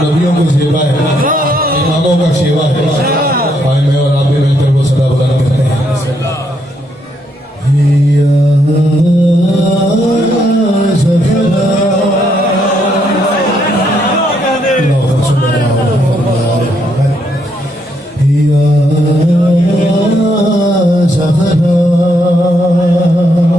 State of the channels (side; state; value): both; normal; correlation 0.75